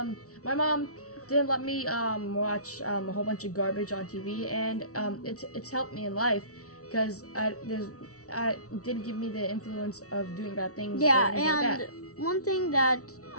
my mom didn't let me watch a whole bunch of garbage on TV, and it's helped me in life because I didn't give me the influence of doing bad things. Yeah, or anything and like that. One thing that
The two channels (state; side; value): late; right; 0.65 ms